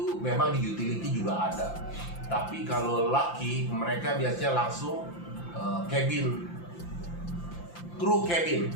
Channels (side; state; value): right; late; 5.8 ms